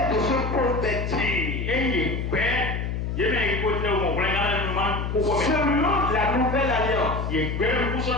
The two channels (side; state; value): left; noise; hum, 2 dB below the sound